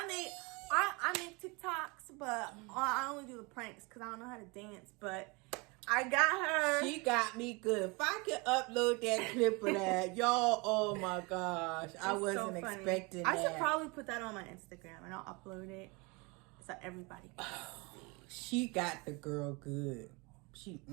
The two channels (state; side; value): quieter; left; 27.9 dB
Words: make TikToks, but I only do the pranks because I don't know how to dance. But I got her. She got me good. If I could upload that clip of that, y'all, oh my gosh. I wasn't expecting that. I should probably put that on my Instagram and I'll upload it so everybody can see. She got the girl good.